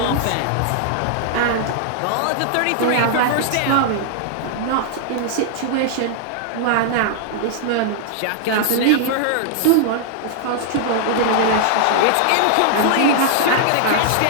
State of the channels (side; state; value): both; different; correlation -0.01